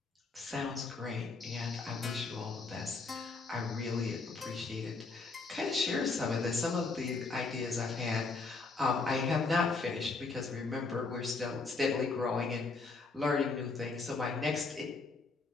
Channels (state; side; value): quieter; right; 4.0 dB